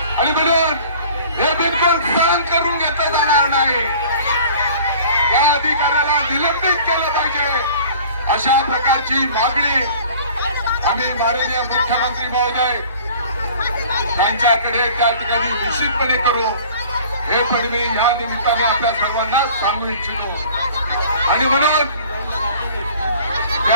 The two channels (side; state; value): both; inverted; correlation -0.47